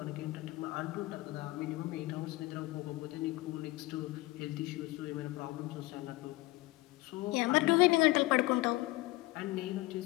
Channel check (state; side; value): quieter; right; 19.7 dB